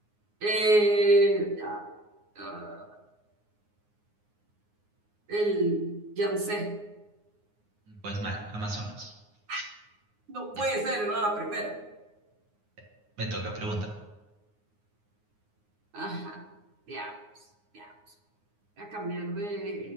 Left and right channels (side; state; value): left; late; 9.6 ms